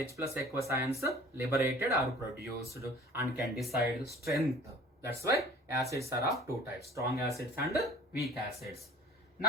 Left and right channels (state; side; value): normal; both; correlation 0.47